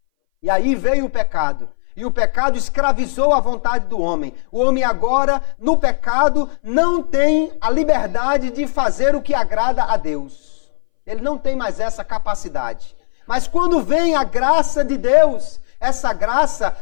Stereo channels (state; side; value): silent; right; 62 dB below the other